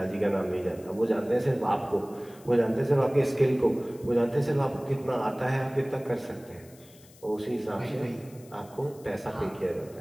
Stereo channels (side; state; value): left; noise; hiss, 25 dB below the sound